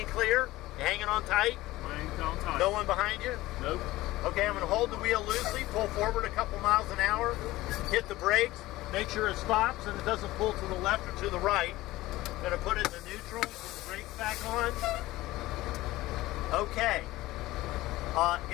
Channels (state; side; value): quieter; right; 17.7 dB